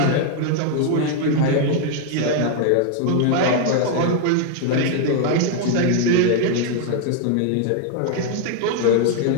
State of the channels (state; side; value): different; both; correlation 0.00